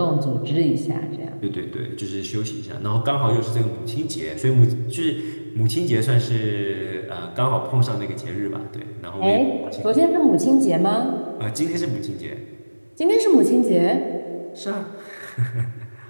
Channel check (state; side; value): inverted; both; correlation -1.00